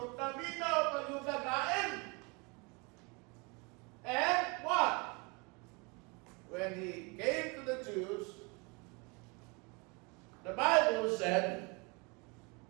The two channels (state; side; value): quieter; left; 29.6 dB